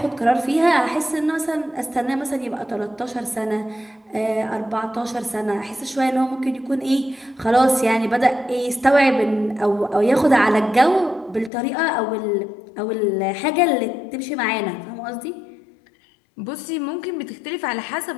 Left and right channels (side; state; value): right; drops out; at 11.5 s